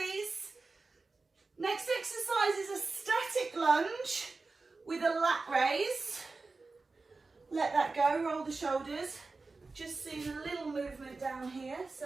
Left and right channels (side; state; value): left; quieter; 3.8 dB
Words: Next exercise is a static lunge with a lat raise. Let that go, roll the shoulders. Just seeing a little movement down here,